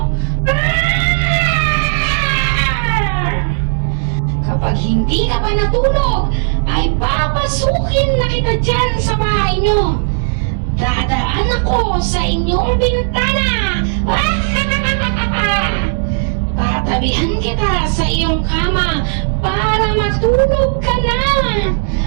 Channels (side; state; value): left; silent; digital silence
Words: Kapag hindi ka pa natulog, ay papasukin na kita dyan sa bahay nyo. Dadaan ako sa inyong bintana. Tatabihan kita sa iyong kama para matulog ka na.